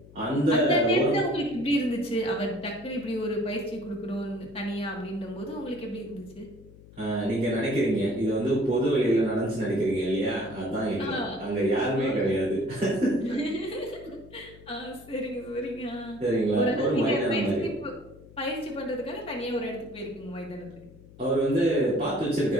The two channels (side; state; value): left; noise; hum, 21 dB below the sound